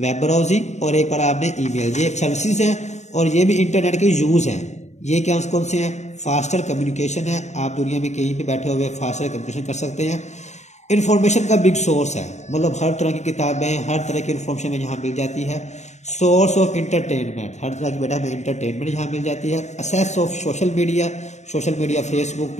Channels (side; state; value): right; late; 0.33 ms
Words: ब्राउजिंग और एक पढ़ा आपने ईमेल। ये सर्विसेज हैं और ये भी इंटरनेट के यूज़ हैं। ये क्या कौन से हैं? फास्टर कम्युनिकेशन है, आप दुनिया में कहीं भी बैठे हुए फास्टर कम्युनिकेशन कर सकते हैं। इन्फॉर्मेशन का बिग सोर्स है, मतलब हर तरह की किताबें, हर तरह की इन्फॉर्मेशन यहाँ मिल जाती है। सोर्स ऑफ इंटरटेनमेंट, हर तरह की बेटा में इंटरटेनमेंट यहाँ मिल जाती है। Assess of social media, social media Facebook,